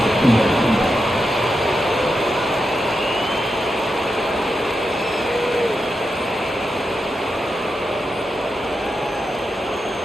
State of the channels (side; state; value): both; normal; correlation 0.87